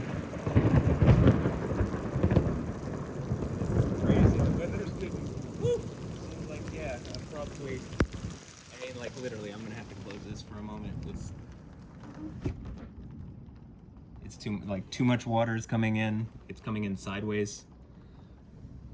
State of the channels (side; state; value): both; identical; correlation 1.00